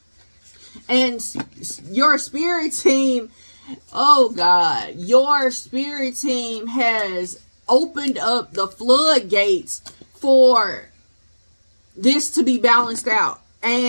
And your spirit team, oh God, your spirit team has opened up the floodgates for this to be balanced out.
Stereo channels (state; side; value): inverted; both; correlation -1.00